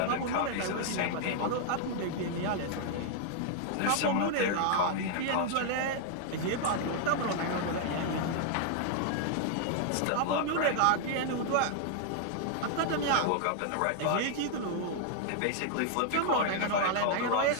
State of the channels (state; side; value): different; both; correlation -0.01